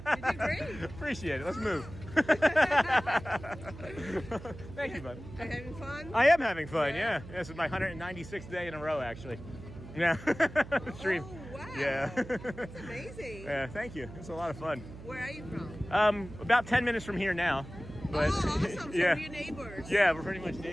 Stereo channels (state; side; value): noise; right; hum, 14 dB below the sound